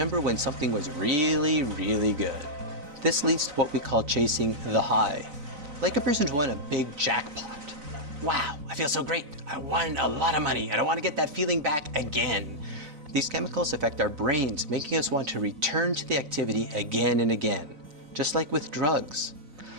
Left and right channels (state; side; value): late; left; 4.0 ms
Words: when something was really, really good. This leads to what we call chasing the high. Like a person who won a big jackpot. Wow, I feel so great. I won a lot of money and I want to get that feeling back again. These chemicals affect our brains, making us want to return to the activity again and again, just like with drugs.